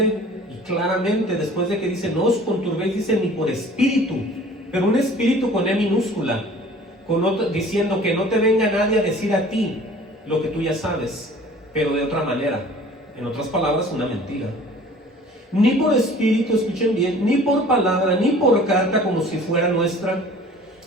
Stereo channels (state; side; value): normal; both; correlation 0.48